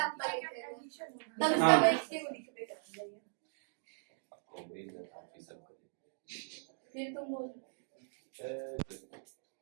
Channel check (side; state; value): left; silent; digital silence